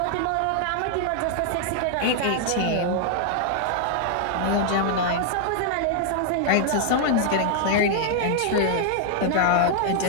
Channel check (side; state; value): both; different; correlation -0.01